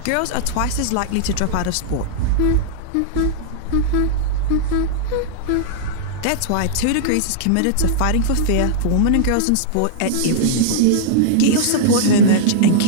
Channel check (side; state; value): both; different; correlation -0.01